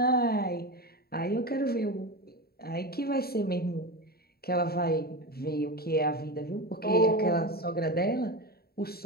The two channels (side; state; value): right; late; 0.45 ms